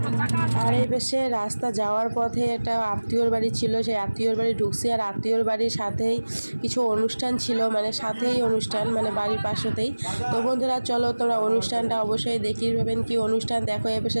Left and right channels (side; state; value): both; inverted; correlation -1.00